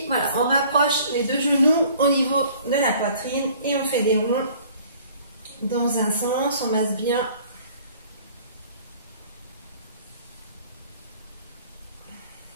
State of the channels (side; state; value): both; inverted; correlation -0.53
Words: voilà, on rapproche les deux genoux au niveau de la poitrine et on fait des ronds dans un sens, on masse bien